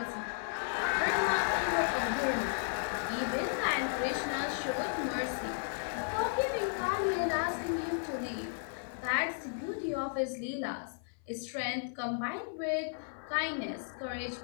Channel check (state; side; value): silent; right; 55 dB below the other